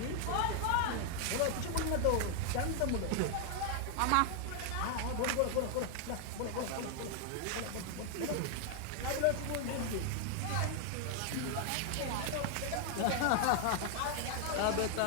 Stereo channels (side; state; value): both; different; correlation 0.00